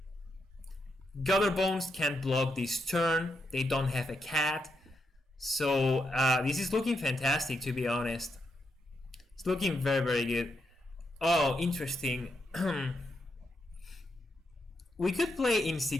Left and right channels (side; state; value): both; normal; correlation 0.82